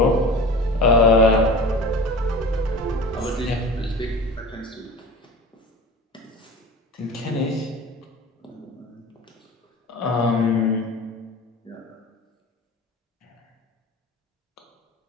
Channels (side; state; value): both; normal; correlation 0.36